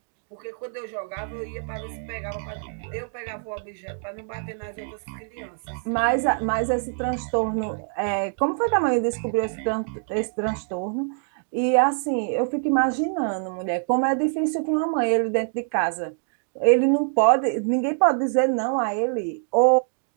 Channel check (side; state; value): left; silent; digital silence